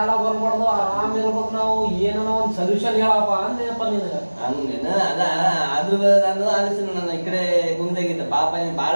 ಬರ್ಬಾರ್ದು ಆರಾಮ್ ಇರ್ಬೇಕು ನಾವು ಏನೋ ಒಂದ್ ಸೊಲ್ಯೂಷನ್ ಹೇಳಪ್ಪ ಅಂದೇನಪ್ಪ ನಿನಗ ಹಂಗೇನ ಅದ ಆದ್ರೂ ನಾನು ಆಲೋಚನೆ ನಾನು ಈ ಕಡೆ ಗುಂದಾಗಿದ್ದ ಪಾಪ ನೀನ್ ಬಾಳ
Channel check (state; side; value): inverted; both; correlation -1.00